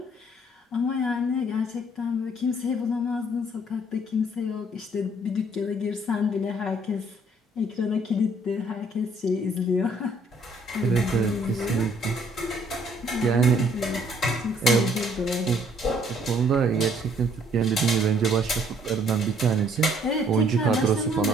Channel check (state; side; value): normal; both; correlation 0.63